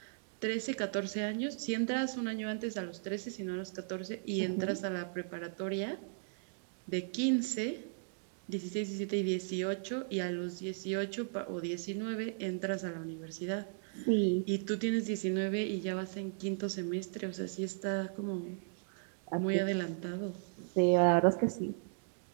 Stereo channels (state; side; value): silent; left; digital silence